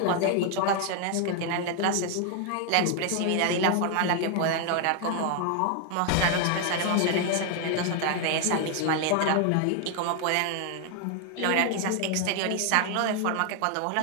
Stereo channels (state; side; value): different; both; correlation 0.00